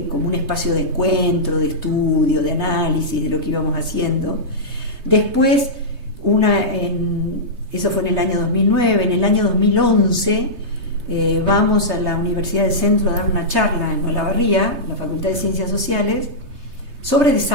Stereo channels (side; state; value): left; late; 3.3 ms